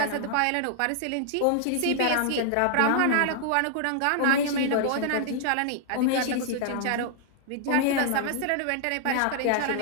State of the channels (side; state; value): both; different; correlation -0.01